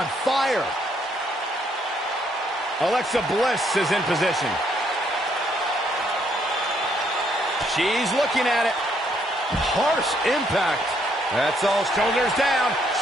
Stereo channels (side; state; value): both; normal; correlation 0.71